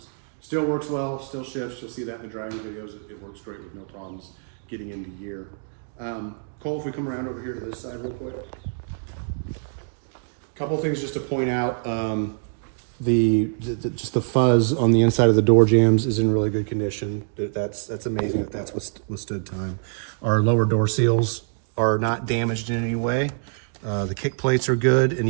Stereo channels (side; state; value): left; silent; digital silence